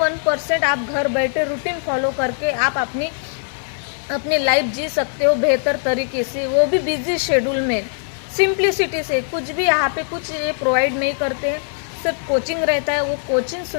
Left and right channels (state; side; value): silent; right; digital silence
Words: आप घर बैठे रूटीन फॉलो करके आप अपनी लाइफ जी सकते हो बेहतर तरीके से, वो भी बिजी शेड्यूल में, सिंप्लिसिटी से। कुछ भी यहाँ पे कुछ ये प्रोवाइड नहीं करते हैं, सिर्फ कोचिंग रहता है। वो कोचिंग